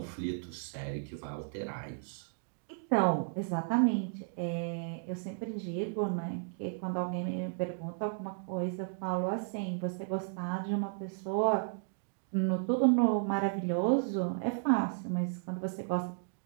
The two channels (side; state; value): left; silent; digital silence